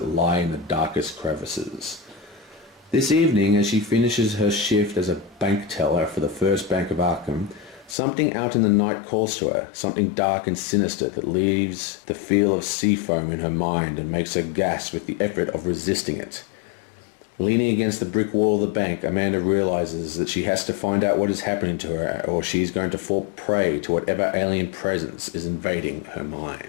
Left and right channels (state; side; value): drops out; right; at 8.0 s